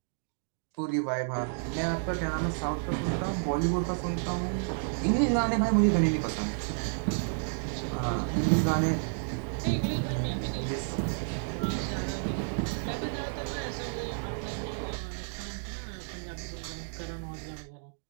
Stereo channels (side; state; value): left; silent; digital silence